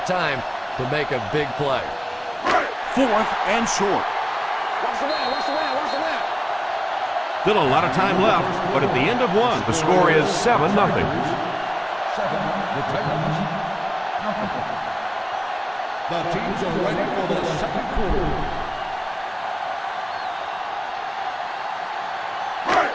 time to make a big play. 4th and short. Still a lot of time left, but at the end of one, the score is 7-0. 7, the Titans. The teams are ready for the second quarter.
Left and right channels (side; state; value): both; identical; correlation 1.00